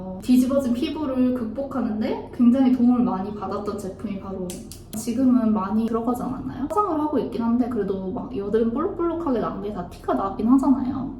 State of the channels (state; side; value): identical; both; correlation 1.00